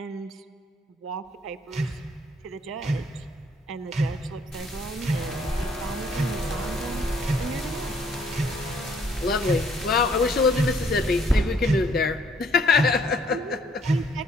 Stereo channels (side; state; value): both; normal; correlation 0.64